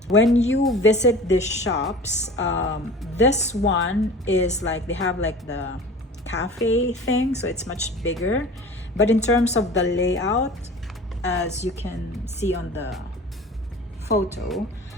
when you visit these shops, this one is like, they have like the cafe thing, so it's much bigger. But in terms of the layout, as you can see on the photo,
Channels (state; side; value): normal; both; correlation 0.40